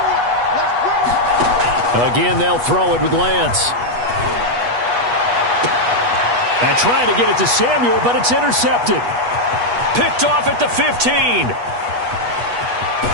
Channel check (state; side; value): late; left; 8.3 ms